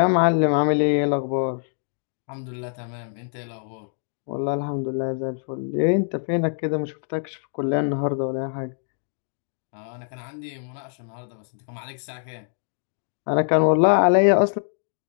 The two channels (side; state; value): right; silent; digital silence